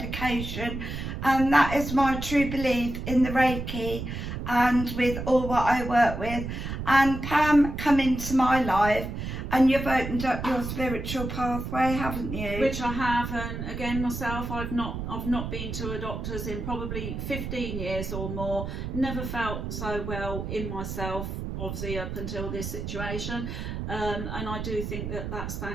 and that is my true belief in the Reiki and with all what I work with. And Pam come into my life and you've opened up your spiritual pathway, haven't you? Which I have, and again myself, I've not been to a doctor's in probably 15 years or more. Never felt so well in myself, obviously up until this situation. And I do think that that's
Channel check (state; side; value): noise; right; rumble, 5 dB below the sound